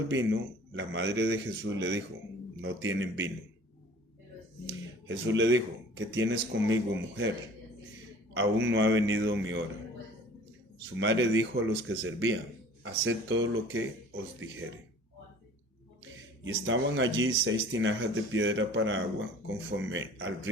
vino, la madre de Jesús le dijo, no tienen vino. Jesús le dijo, ¿qué tienes conmigo, mujer? Aún no ha venido mi hora. Su madre dijo a los que servían, haced todo lo que os dijere. Y estaban allí 6 tinajas de piedra para agua, conforme al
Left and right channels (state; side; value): normal; both; correlation 0.48